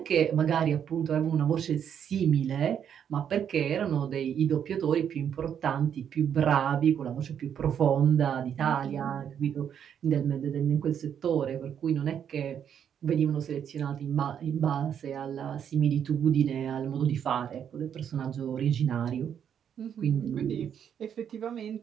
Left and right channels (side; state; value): left; quieter; 8.6 dB